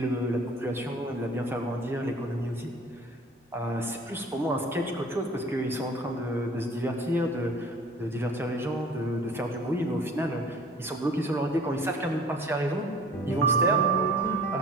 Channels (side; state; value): both; normal; correlation 0.47